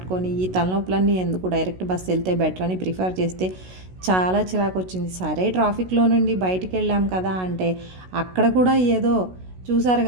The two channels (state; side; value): late; left; 16 ms